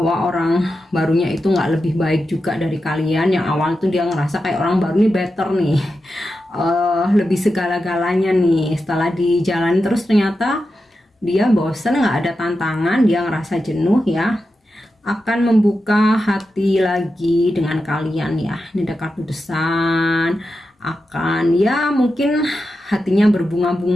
orang barunya itu nggak lebih baik juga dari kalian. Yang awal tuh dia ngerasa kayak orang baru nih better nih, lebih segala-galanya nih. Setelah dijalani terus ternyata dia bosen, nggak ada tantangan, dia ngerasa jenuh ya, akan membuka hati lagi dengan kalian ya. Ini ada kartu the sun, akan ya mungkin hatinya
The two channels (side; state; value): both; normal; correlation 0.90